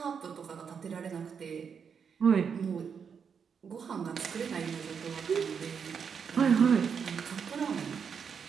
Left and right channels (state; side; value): quieter; left; 6.6 dB